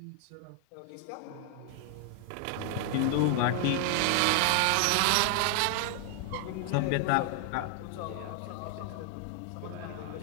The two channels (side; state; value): both; different; correlation 0.00